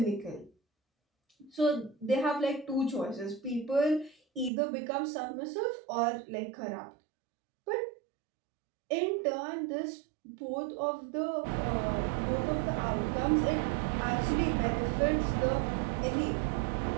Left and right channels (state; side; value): drops out; left; at 4.5 s